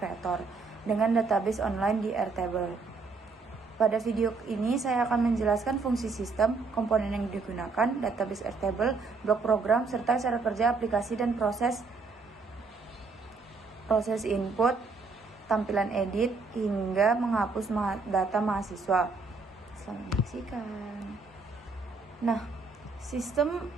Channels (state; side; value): quieter; left; 4.2 dB